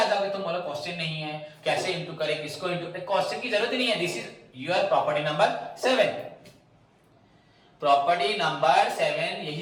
जाओगे, तुम बोलो क्वेश्चन नहीं है, कैसे इनटू करें, किसको इनटू, क्वेश्चन की जरूरत ही नहीं है। This is your property number 7। Property number 7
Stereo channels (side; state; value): both; identical; correlation 1.00